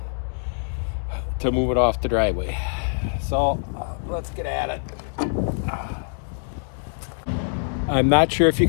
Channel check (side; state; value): right; silent; digital silence